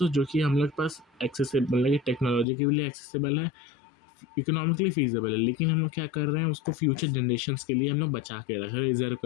जो कि हम लोग के पास एक्सेसिबल मतलब कि टेक्नोलॉजी के लिए एक्सेसिबल है, इकोनॉमिकली फीजिबल है, लेकिन हम लोग क्या कर रहे हैं उसको फ्यूचर जनरेशन्स के लिए हम लोग बचा के रख रहे हैं, रिजर्व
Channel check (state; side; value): drops out; right; at 2.5 s